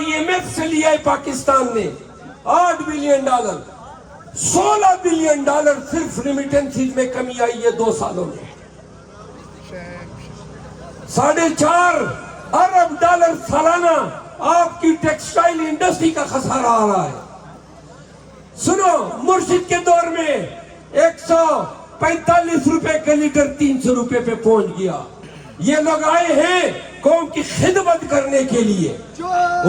ایم ایف سے لیا ہے پاکستان نے 8 بلین ڈالر، 16 بلین ڈالر صرف ریمیٹنسز میں کمی آئی ہے 2 سالوں میں۔ 4.5 ارب ڈالر سالانہ آپ کی ٹیکسٹائل انڈسٹری کا خسارہ آ رہا ہے۔ سنو، مرشد کے دور میں 145 روپے کا لیٹر 300 روپے پہ پہنچ گیا۔ یہ لوگ آئے ہیں قوم کی خدمت کرنے کے لیے.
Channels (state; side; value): identical; both; correlation 1.00